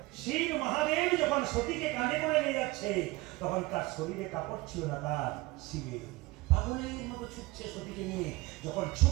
শিব মহাদেব যখন সতীকে কাঁধে করে নিয়ে যাচ্ছে, তখন তার শরীরে কাপড় ছিল না, তার শিবের। পাগলের মতো ছুটছে সতীকে নিয়ে, যখন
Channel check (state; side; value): quieter; left; 21.4 dB